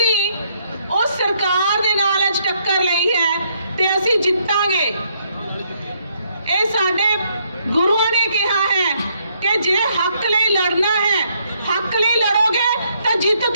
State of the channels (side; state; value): both; inverted; correlation -0.71